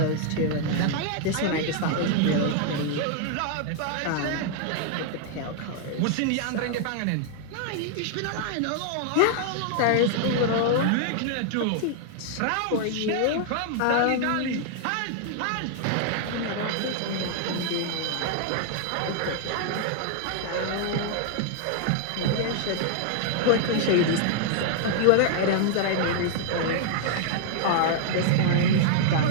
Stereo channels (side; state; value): both; different; correlation -0.01